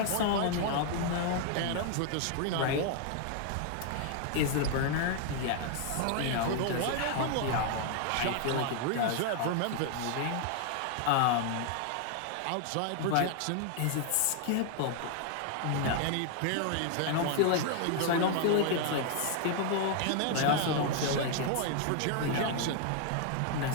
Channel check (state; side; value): different; both; correlation 0.00